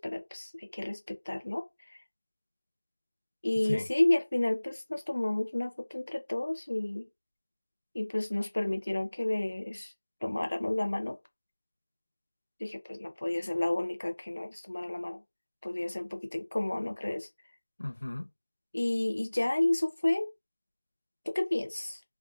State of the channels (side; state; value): both; inverted; correlation -1.00